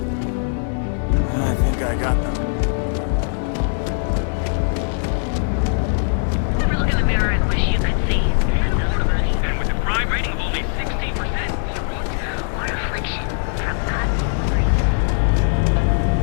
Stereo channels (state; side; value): silent; right; 63 dB below the other